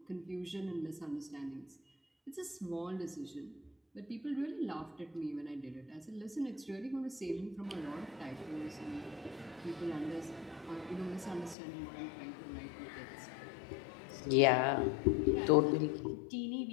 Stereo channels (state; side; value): drops out; right; at 11.6 s